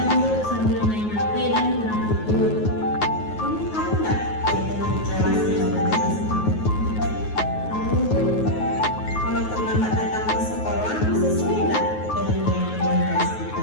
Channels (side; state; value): right; late; 9.4 ms